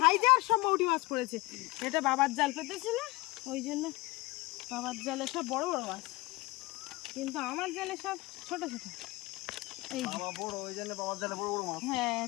সব মৌটি মাছ পড়েছে। এটা বাবার জাল পেতেছিল, ওই জন্য বাবার জালে সব বড় বড় মাছ, কিন্তু আমার জালে সব ছোট ছোট। এই বাবা বড়, ওই জন্য বাবার জালে বড় বড় মাছ। হ্যাঁ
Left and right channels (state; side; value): quieter; right; 22.0 dB